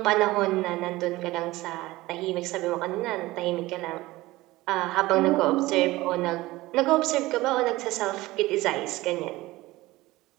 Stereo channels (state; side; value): quieter; left; 18.9 dB